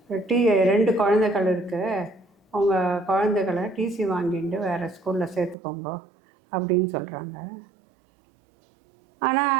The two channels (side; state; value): left; drops out; at 5.6 s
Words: 2 குழந்தைகள் இருக்குது, அவங்க குழந்தைகளை டிசி வாங்கிட்டு வேறு ஸ்கூலில் சேர்த்துக்கோங்க அப்படின்னு சொல்கிறாங்க.